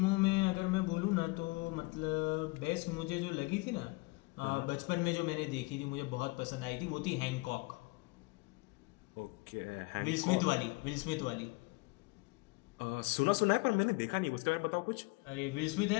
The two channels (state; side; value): quieter; right; 25.8 dB